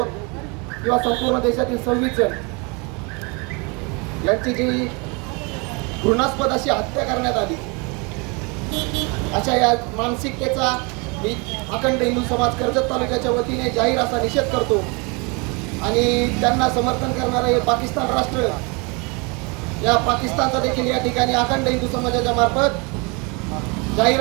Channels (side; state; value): left; quieter; 30.4 dB